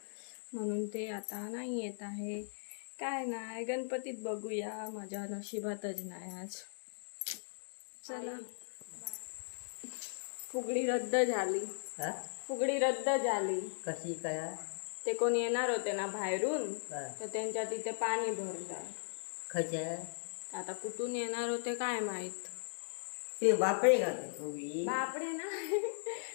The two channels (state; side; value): silent; right; digital silence